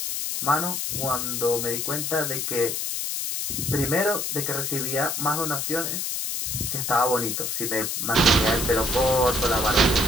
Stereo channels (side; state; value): left; noise; hiss, 2 dB below the sound